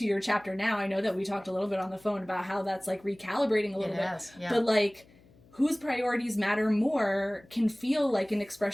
your chapter now, I know that we talked a little bit on the phone about how that's like recalibrating a little bit. Yeah. But like whose priorities matter more can feel like an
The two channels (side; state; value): left; noise; hum, 27 dB below the sound